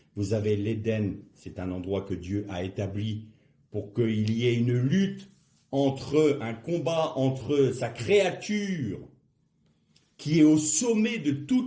Vous avez l'Éden, c'est un endroit que Dieu a établi pour qu'il y ait une lutte un combat entre sa créature, qui est au sommet de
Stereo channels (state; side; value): identical; both; correlation 1.00